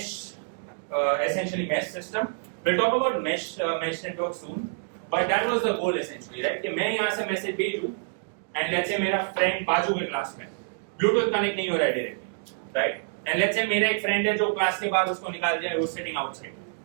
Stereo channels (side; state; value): left; silent; digital silence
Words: essentially mesh system. We'll talk about mesh network soon, but that was the goal essentially, right? कि मैं यहाँ से message भेजूँ and let's say मेरा friend बाजू के class में Bluetooth connect नहीं हो रहा है directly, right? And let's say मेरा एक friend है जो class के बाद उसको निकाल दिया है, वो sitting outside.